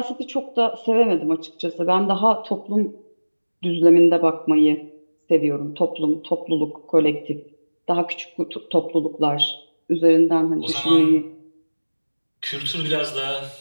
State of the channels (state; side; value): inverted; both; correlation -1.00